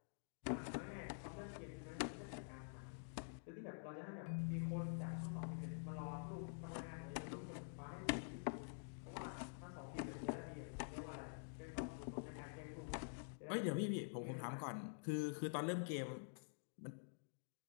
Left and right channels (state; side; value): silent; right; digital silence